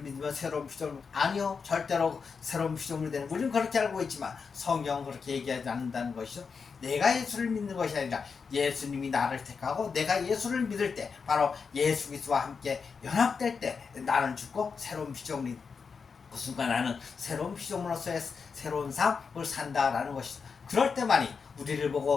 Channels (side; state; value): right; quieter; 5.5 dB